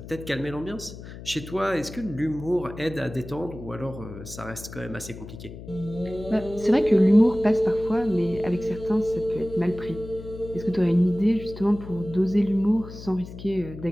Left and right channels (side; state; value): left; noise; hum, 13 dB below the sound